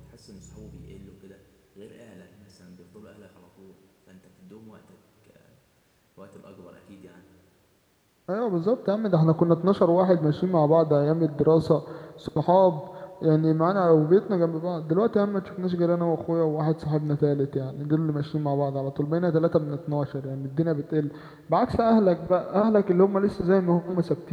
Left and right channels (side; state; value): both; identical; correlation 1.00